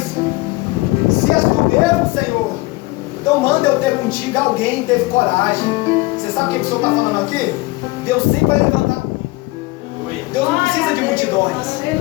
se és tu mesmo, Senhor, então manda eu ter contigo. Alguém teve coragem. Você sabe o que o Senhor está falando aqui? Deus sempre vai levantar um. Deus não precisa de multidões.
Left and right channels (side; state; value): right; quieter; 22.4 dB